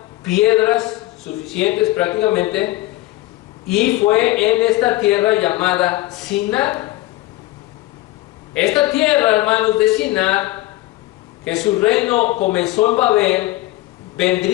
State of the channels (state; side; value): quieter; right; 17.9 dB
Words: piedras suficientes prácticamente, y fue en esta tierra llamada Sinar. Esta tierra, hermanos, de Sinar, que su reino comenzó en Babel,